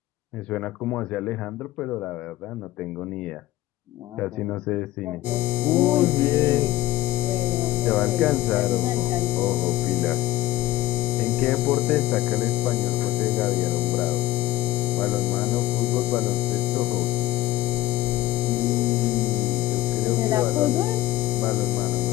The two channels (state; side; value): quieter; right; 15.8 dB